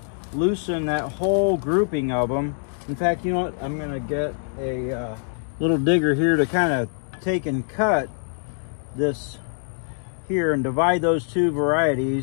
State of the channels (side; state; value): right; silent; digital silence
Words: loosen that whole grouping of them. In fact, you know what? I'm going to get a little digger here to kind of take and cut this here and divide those two